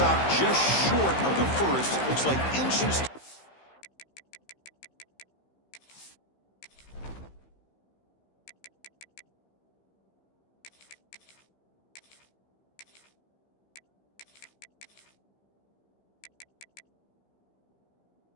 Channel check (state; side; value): late; right; 15 ms